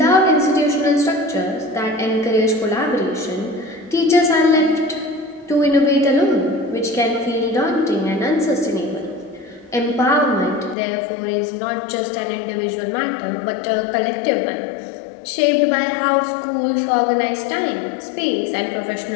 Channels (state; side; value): drops out; right; at 10.8 s